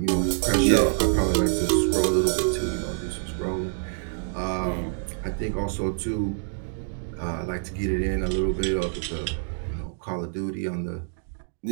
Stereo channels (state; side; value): silent; left; digital silence